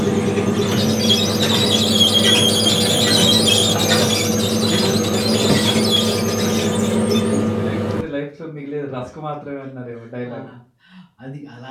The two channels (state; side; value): identical; both; correlation 1.00